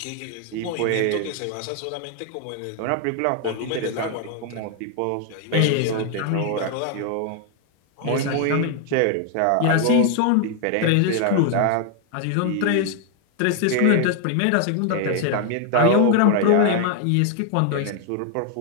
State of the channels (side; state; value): both; different; correlation 0.00